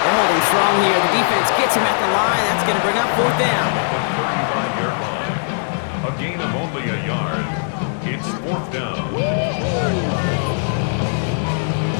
They're holding strong here. The defense gets him at the line. That's going to bring up 4th down. A gain of only a yard. It's 4th down.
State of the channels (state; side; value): silent; right; digital silence